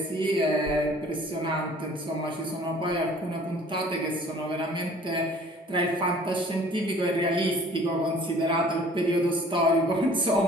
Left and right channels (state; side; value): normal; both; correlation 0.52